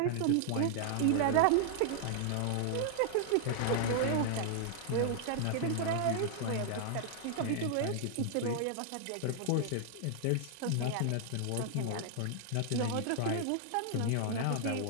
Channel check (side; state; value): both; different; correlation -0.01